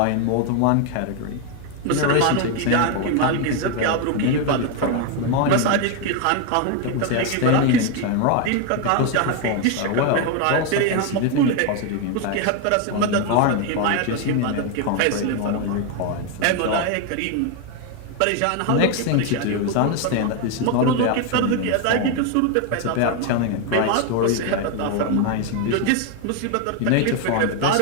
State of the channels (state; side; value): different; both; correlation 0.01